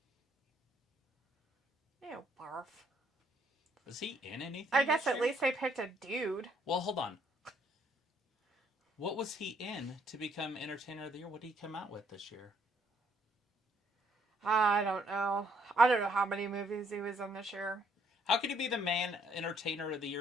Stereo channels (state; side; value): normal; both; correlation 0.68